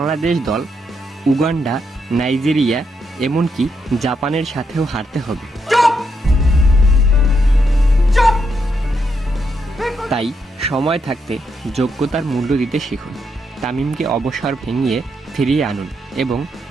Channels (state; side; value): normal; both; correlation 0.79